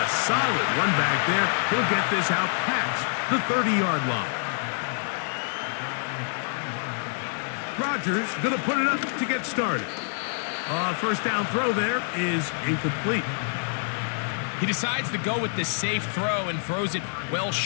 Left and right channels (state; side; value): silent; right; 61 dB below the other